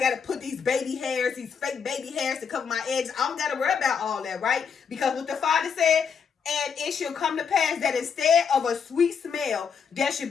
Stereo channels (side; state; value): right; quieter; 6.5 dB